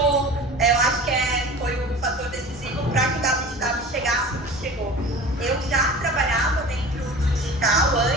acho que foi o fator decisivo para que o WTW chegasse onde chegou. Eu já trabalhava dentro do digital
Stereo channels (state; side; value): normal; both; correlation 0.38